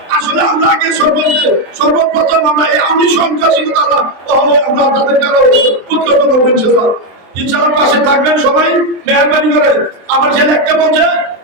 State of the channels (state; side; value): late; left; 23 ms